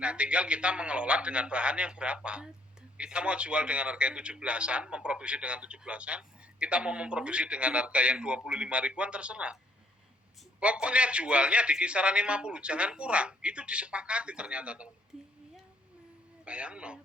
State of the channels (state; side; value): normal; both; correlation 0.66